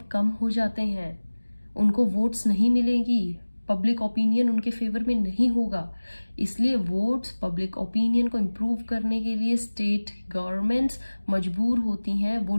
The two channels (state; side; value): inverted; both; correlation -1.00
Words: कम हो जाते हैं. उनको वोट्स नहीं मिलेगी, पब्लिक ओपिनियन उनके फेवर में नहीं होगा. इसलिए वोट्स, पब्लिक ओपिनियन को इम्प्रूव करने के लिए स्टेट गवर्नमेंट्स मजबूर होती हैं वो